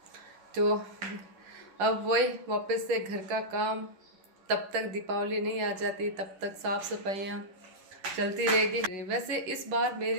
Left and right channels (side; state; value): left; late; 10 ms